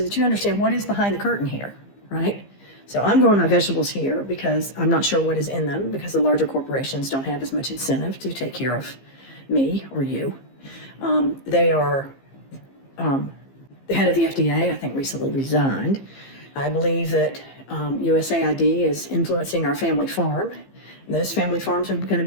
that you understand what is behind the curtain here, right? So I'm growing my vegetables here because I'm not sure what is in them, because the larger corporations don't have as much incentive to take care of me or you. They are, the head of the FDA, I think, recently resigned. I believe that USAID is influencing our family farm. Those family farms are going to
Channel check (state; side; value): late; right; 15 ms